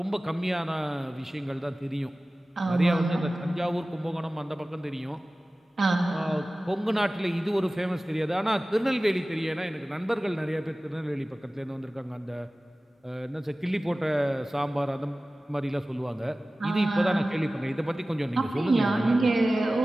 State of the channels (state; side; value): normal; both; correlation 0.97